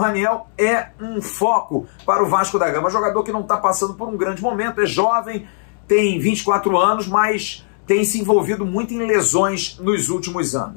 é um foco para o Vasco da Gama. Jogador que não está passando por um grande momento, é jovem, tem 24 anos, mas tem se envolvido muito em lesões nos últimos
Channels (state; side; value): silent; right; 67 dB below the other